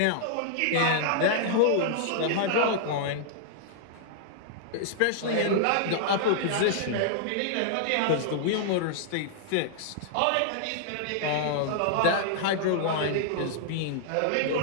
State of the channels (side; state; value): both; different; correlation -0.01